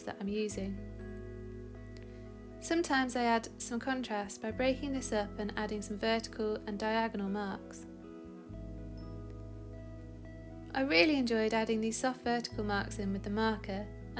that I'm using. Sometimes I add some contrast by breaking this up and adding some vertical and diagonal marks. I really enjoyed adding these soft vertical marks in with the marker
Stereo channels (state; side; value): identical; both; correlation 1.00